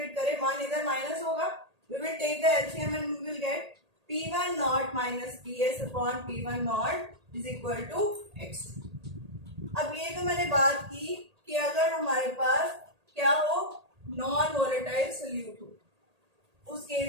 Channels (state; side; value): late; left; 1.8 ms